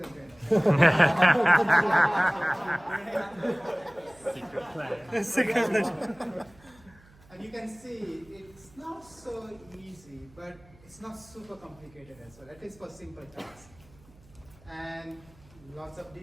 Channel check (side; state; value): right; noise; hum, 26 dB below the sound